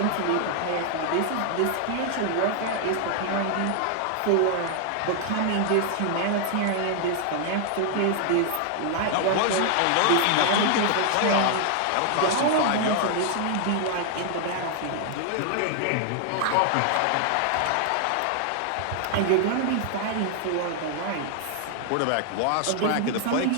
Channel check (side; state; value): both; different; correlation 0.00